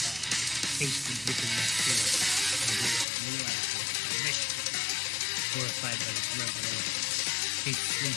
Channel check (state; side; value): drops out; right; at 3.1 s